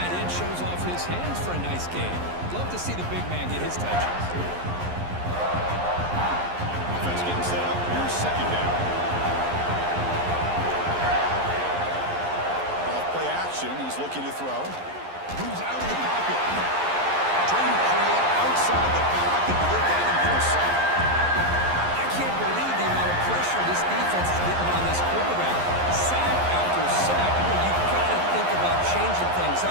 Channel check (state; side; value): late; left; 11 ms